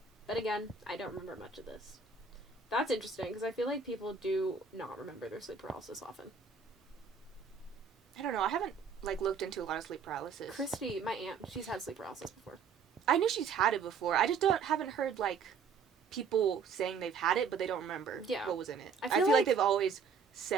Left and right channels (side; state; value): left; quieter; 5.7 dB